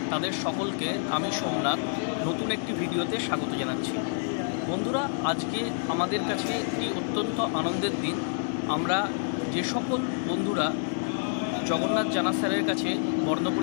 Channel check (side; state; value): right; silent; 59 dB below the other